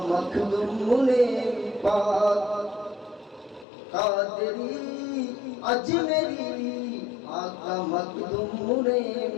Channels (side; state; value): right; drops out; at 3.7 s